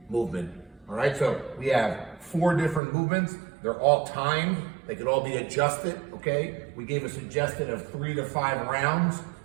movement. All right, so we have 4 different movements. They're all timed. They could all be adjusted, okay? We gave a suggestion of 3 to 5 rounds,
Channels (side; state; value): left; drops out; at 2.8 s